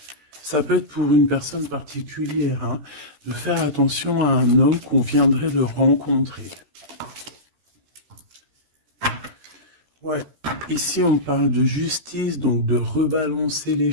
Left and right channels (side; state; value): left; late; 13 ms